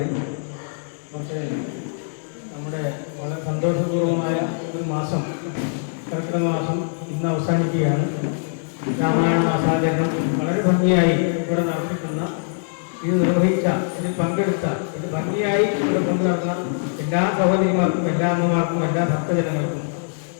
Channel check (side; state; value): right; silent; digital silence